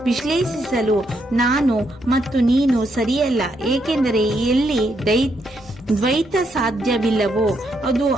ವಿಶ್ಲೇಷಿಸಲು ನಾನು ಮತ್ತು ನೀನು ಸರಿಯಲ್ಲ. ಏಕೆಂದರೆ ಎಲ್ಲಿ ದ್ವೈತ ಸಾಧ್ಯವಿಲ್ಲವೋ ಅದು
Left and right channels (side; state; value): both; normal; correlation 0.77